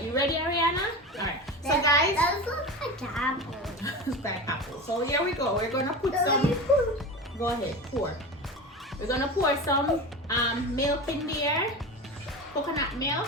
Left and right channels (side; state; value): both; normal; correlation 0.27